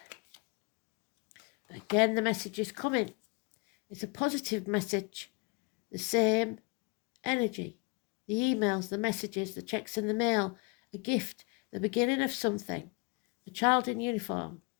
Again, the message is coming. It's a positive message. The same energy. The emails, the messages, the checks in the mail, a gift, the beginning of something. A child in uniform.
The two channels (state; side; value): quieter; right; 30.8 dB